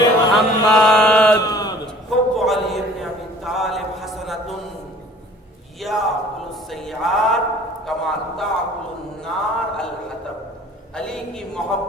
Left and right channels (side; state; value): both; normal; correlation 0.51